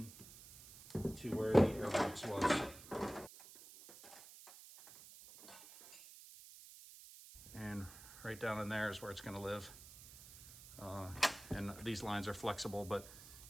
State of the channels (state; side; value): noise; right; hiss, 17 dB below the sound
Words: to where the air box was. And right down in there is where it's going to live. And these lines are flexible, but